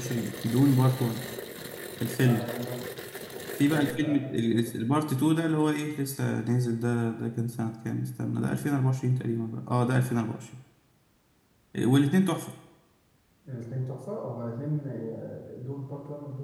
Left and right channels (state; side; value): identical; both; correlation 1.00